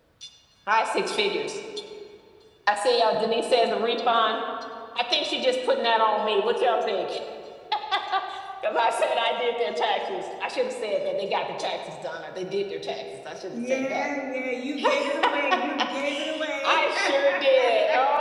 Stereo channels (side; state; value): both; identical; correlation 1.00